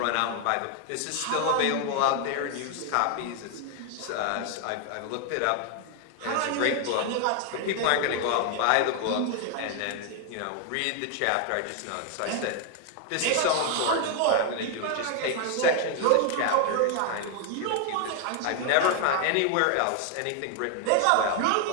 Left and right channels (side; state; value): both; different; correlation 0.00